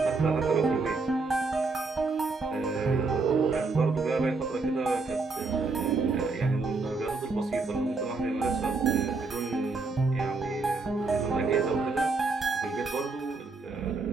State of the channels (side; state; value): left; quieter; 3.9 dB